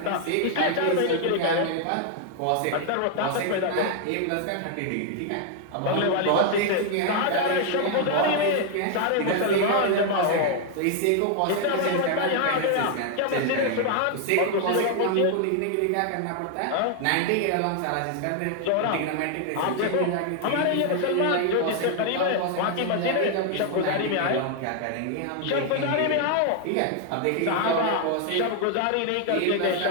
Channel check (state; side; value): different; both; correlation 0.00